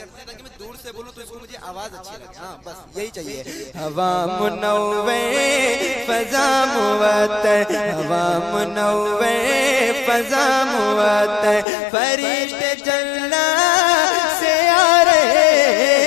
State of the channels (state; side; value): drops out; right; at 11.7 s